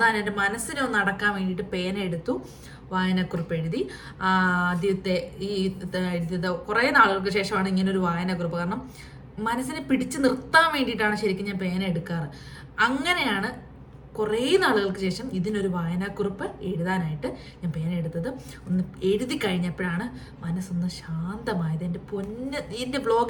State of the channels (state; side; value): identical; both; correlation 1.00